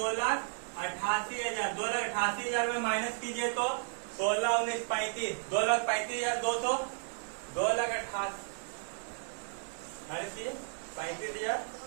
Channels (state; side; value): silent; left; digital silence